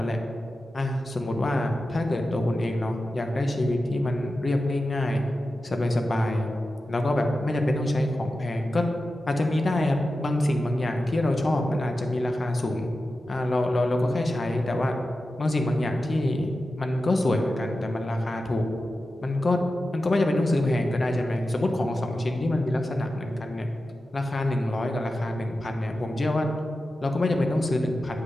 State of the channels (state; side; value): normal; both; correlation 0.92